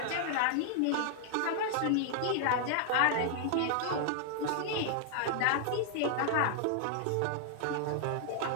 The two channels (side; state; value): both; different; correlation 0.00